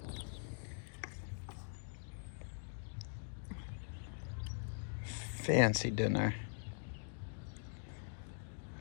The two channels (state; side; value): silent; right; digital silence